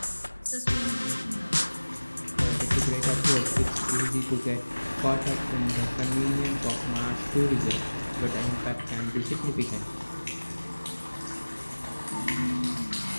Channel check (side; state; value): both; inverted; correlation -1.00